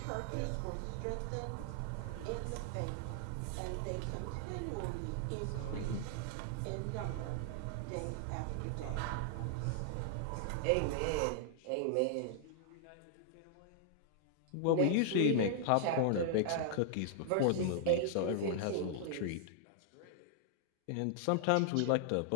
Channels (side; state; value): both; different; correlation -0.01